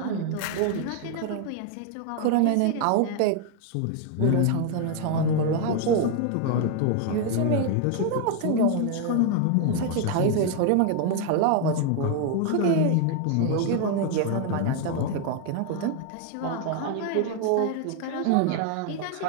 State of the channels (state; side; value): different; both; correlation 0.01